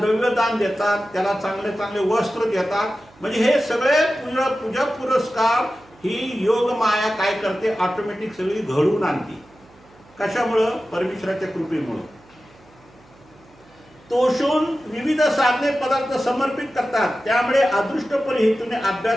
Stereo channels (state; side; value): noise; right; hum, 28 dB below the sound